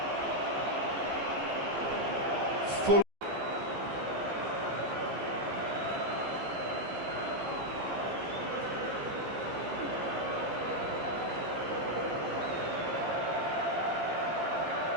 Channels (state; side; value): late; left; 14 ms